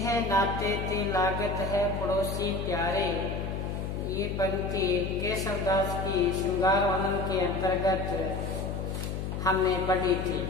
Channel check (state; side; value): noise; left; hum, 4 dB below the sound